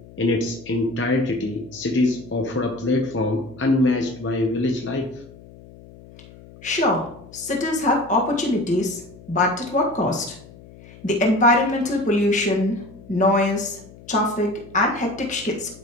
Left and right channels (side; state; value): left; noise; hum, 20 dB below the sound